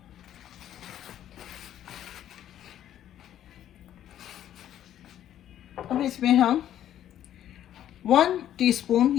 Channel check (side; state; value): right; quieter; 11.3 dB